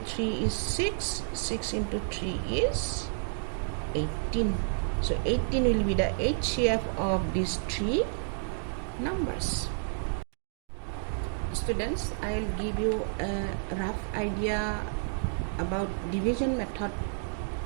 3 is 6, 6 into 3 is 18. So 18 will be the HCF of these 3 numbers. Students, I will give you a rough idea about division method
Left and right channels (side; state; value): left; silent; digital silence